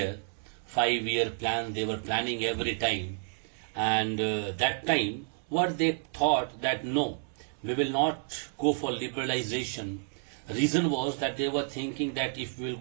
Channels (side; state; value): left; silent; 58 dB below the other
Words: 5-year plan they were planning every time, and that time what they thought that no, we will not go for liberalization. Reason was that they were thinking that if we will